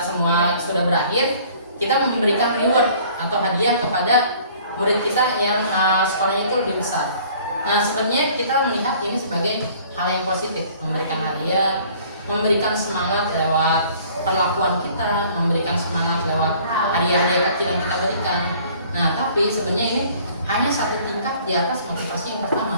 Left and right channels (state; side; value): inverted; both; correlation -0.54